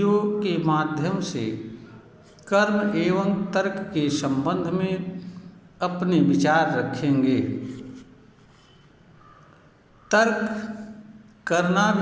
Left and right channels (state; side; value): identical; both; correlation 1.00